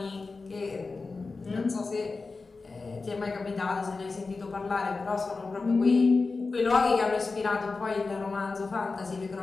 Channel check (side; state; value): right; quieter; 4.0 dB